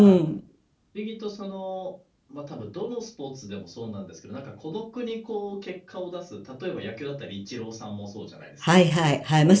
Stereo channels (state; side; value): identical; both; correlation 1.00